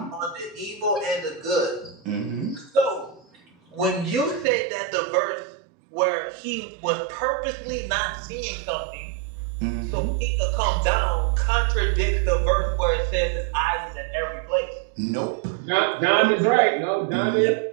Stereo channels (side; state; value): left; drops out; at 4.5 s